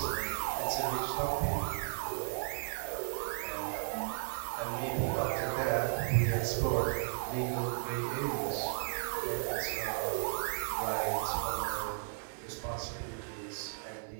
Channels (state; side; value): silent; left; digital silence